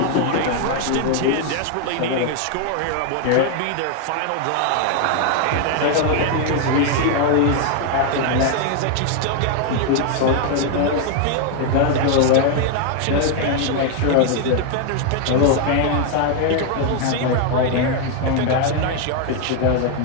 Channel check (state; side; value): different; both; correlation 0.01